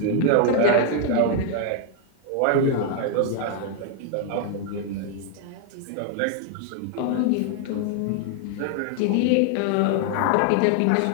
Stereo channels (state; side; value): different; both; correlation 0.00